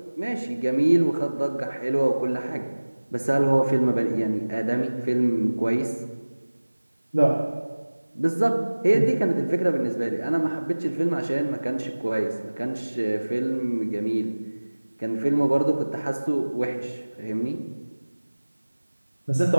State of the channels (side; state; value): both; inverted; correlation -1.00